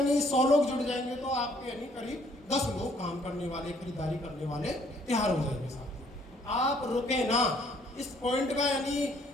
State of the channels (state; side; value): normal; both; correlation 0.63